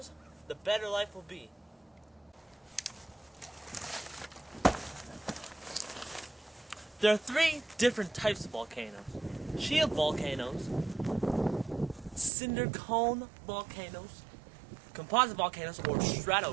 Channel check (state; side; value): drops out; left; at 12.3 s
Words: the better life will be. There are three different types of volcanoes: shield volcanoes, cinder cone volcanoes, composite volcanoes, or